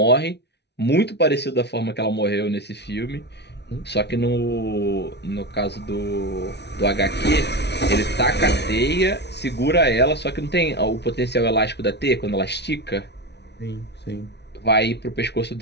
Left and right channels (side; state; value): right; late; 0.50 ms